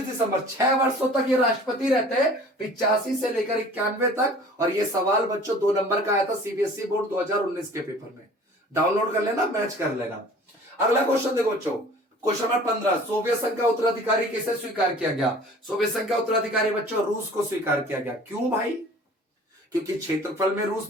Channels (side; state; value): both; normal; correlation 0.47